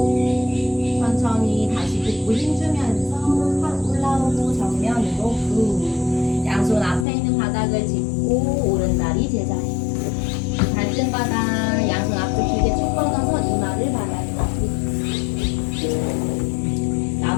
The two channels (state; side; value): drops out; right; at 7.1 s